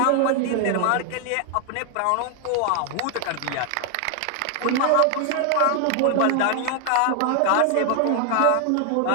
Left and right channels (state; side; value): different; both; correlation 0.00